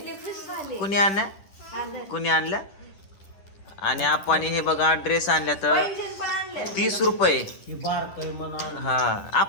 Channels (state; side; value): late; right; 10 ms